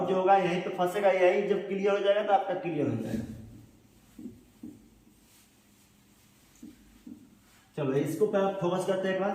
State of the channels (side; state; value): both; identical; correlation 1.00